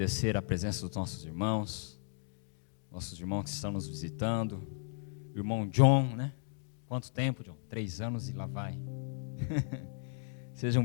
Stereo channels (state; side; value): silent; right; digital silence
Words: a presença dos nossos irmãos que estão nos visitando. O irmão John, né? Quanto tempo, John? 3 anos e lá vai.